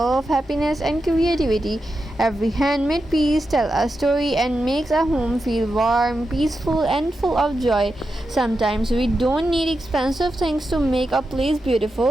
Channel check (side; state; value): both; normal; correlation 0.88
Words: happiness and creativity. Every handmade piece tells a story and makes a home feel warm, peaceful and full of joy. Sometimes we don't need expensive things to make a place